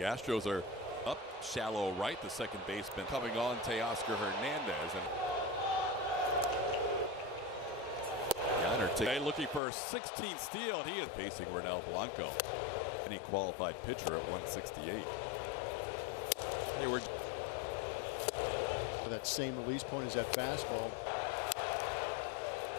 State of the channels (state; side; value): drops out; right; at 9.6 s